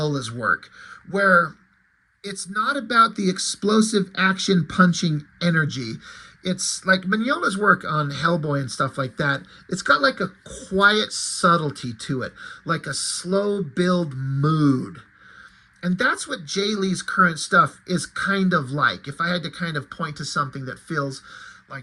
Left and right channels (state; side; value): identical; both; correlation 1.00